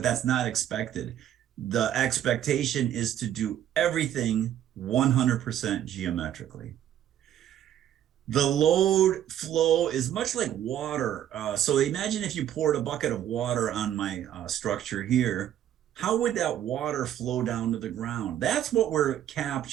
that's not expected. The expectation is to do everything 100% geometrically. The load flow is much like water. So imagine if you poured a bucket of water on my structure here, how would that water flow down to the ground? That's what we're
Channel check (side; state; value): left; quieter; 11.1 dB